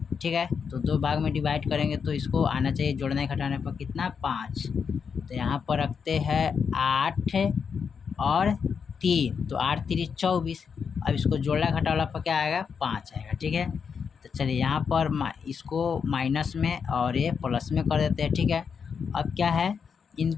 ठीक है। तो 2 भाग में डिवाइड करेंगे तो इसको आना चाहिए जोड़ने घटाने पर कितना 5। तो यहाँ पर रखते हैं 8 और 3, तो 8 3 24। अब इसको जोड़ना घटाना पर क्या आएगा 5 आएगा, ठीक है। तो चलिए यहाँ पर इसको माइनस में और ये प्लस में कर देते हैं, ठीक है। अब क्या है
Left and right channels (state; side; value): quieter; right; 6.3 dB